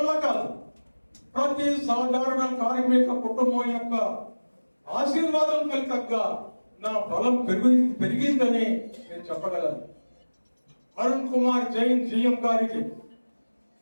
కాదు. ప్రతి సాధారణ కార్మిక కుటుంబం యొక్క ఆశీర్వాదం ఫలితంగా నా బలం పెరిగిందని నేను చెప్పగలను. అరుణ్ కుమార్ జైన్ GM గారికి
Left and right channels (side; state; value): both; inverted; correlation -1.00